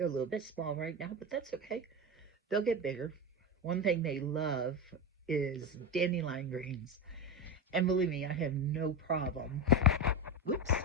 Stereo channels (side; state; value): both; normal; correlation 0.17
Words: a little bit small right now, but that's okay. They'll get bigger. One thing they love is dandelion greens. And believe me, I have no problem.